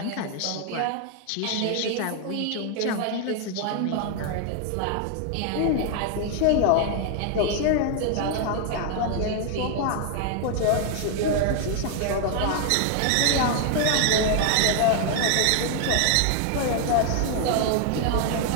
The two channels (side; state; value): both; different; correlation 0.00